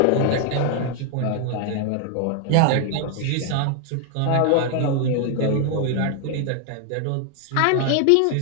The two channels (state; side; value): different; both; correlation 0.00